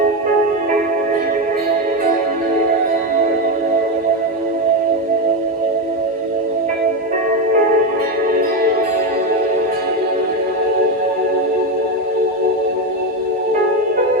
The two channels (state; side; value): normal; both; correlation 0.11